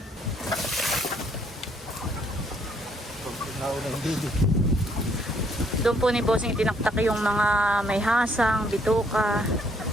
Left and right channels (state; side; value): normal; both; correlation 0.67